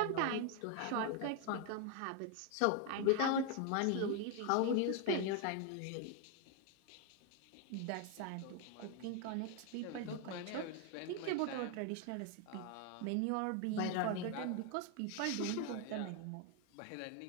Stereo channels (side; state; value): both; different; correlation 0.01